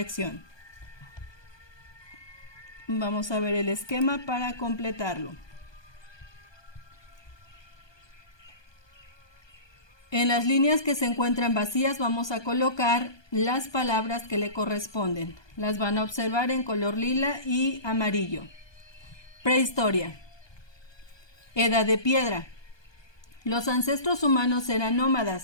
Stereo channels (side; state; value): right; late; 1.2 ms